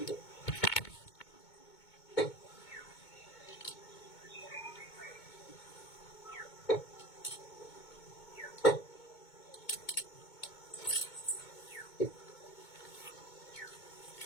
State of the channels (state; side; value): late; right; 2.2 ms